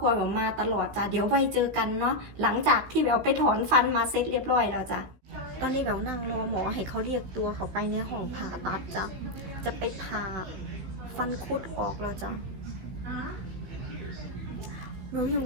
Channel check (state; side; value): late; left; 16 ms